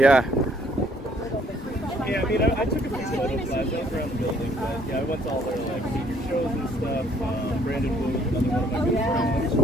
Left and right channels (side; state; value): both; normal; correlation 0.64